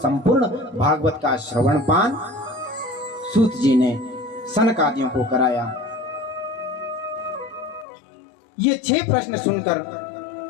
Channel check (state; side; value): drops out; right; at 7.9 s